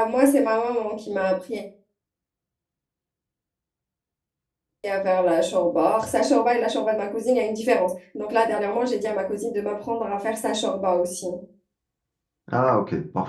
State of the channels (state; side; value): identical; both; correlation 1.00